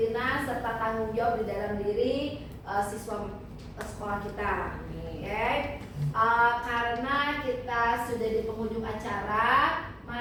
serta tanggung jawab di dalam diri siswa sekolah kita. Karena kita sudah di penghujung acara,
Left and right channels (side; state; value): both; identical; correlation 1.00